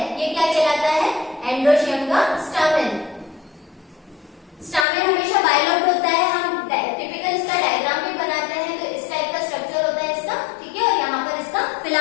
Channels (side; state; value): right; drops out; at 4.9 s